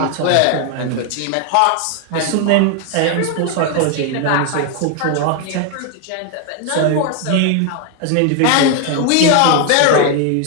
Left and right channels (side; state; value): both; different; correlation 0.01